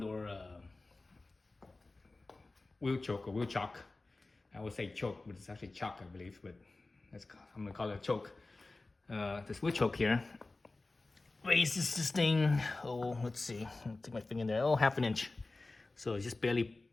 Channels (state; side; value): quieter; right; 3.3 dB